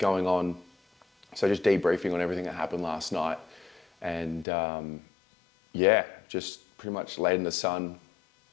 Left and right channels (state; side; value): drops out; right; at 4.5 s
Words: on. So just debriefing on everything that happened last night. And yeah, just pretty much laid in the sun,